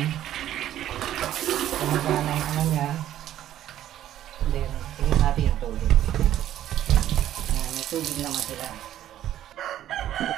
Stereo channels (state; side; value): quieter; left; 12.1 dB